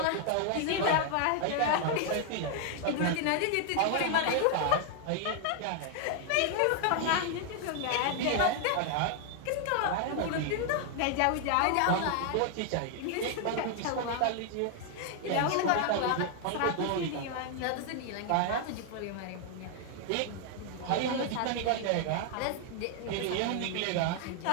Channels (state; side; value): different; both; correlation 0.00